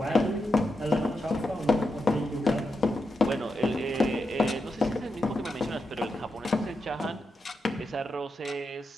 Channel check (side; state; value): both; normal; correlation 0.86